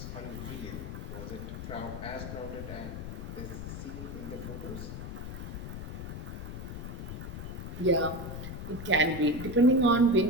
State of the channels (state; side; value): noise; left; rumble, 7 dB below the sound